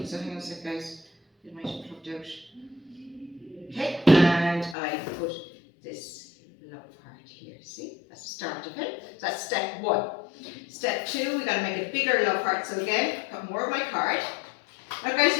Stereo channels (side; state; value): right; drops out; at 4.8 s